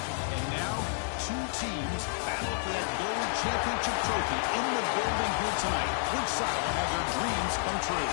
now, two teams battle for that gold championship trophy in the building here tonight. Which side will have their dreams come true?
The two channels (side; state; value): right; silent; 58 dB below the other